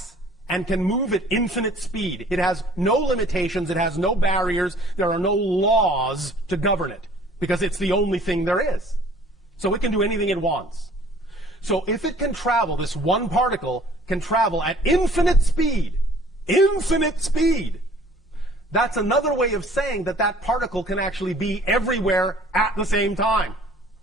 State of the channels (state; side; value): normal; both; correlation 0.53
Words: and can move at infinite speed. It has no limitations, it has no barriers, there are no laws to govern it, because it's the only thing there is. So it can do anything it wants. So if it can travel, this one particle can travel at infinite speed, that's another way of saying that that particle can actually be everywhere at the same time.